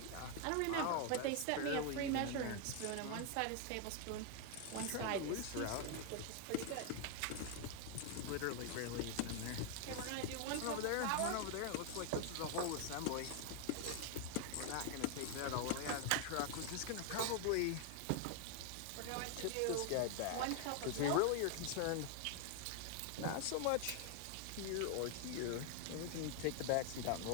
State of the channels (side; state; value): both; different; correlation 0.00